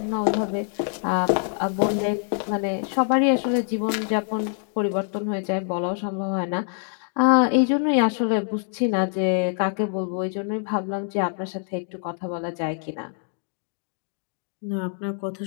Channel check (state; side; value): silent; right; 57 dB below the other